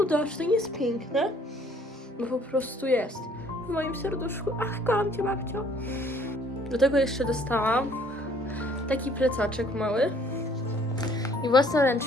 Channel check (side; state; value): both; normal; correlation 0.59